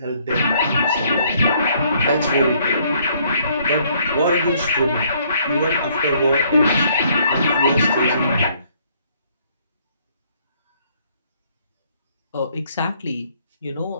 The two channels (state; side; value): inverted; both; correlation -0.65